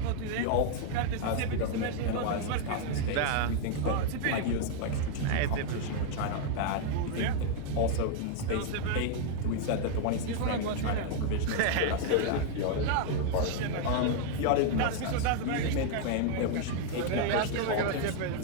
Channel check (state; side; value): different; both; correlation 0.00